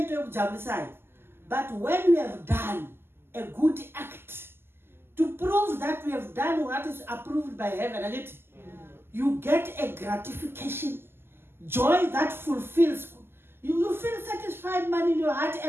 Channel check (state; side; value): late; left; 0.11 ms